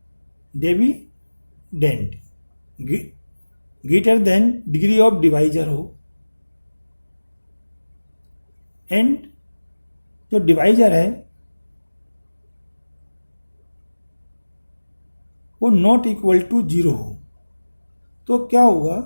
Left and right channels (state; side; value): inverted; both; correlation -1.00